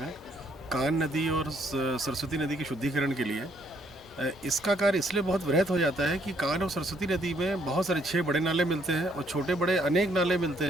कान नदी और सरस्वती नदी के शुद्धिकरण के लिए। इसका कार्य इसलिए बहुत वृहत हो जाता है कि कान और सरस्वती नदी में बहुत सारे 6 बड़े नाले मिलते हैं और छोटे बड़े अनेक नाले मिलते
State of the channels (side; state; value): both; normal; correlation 0.68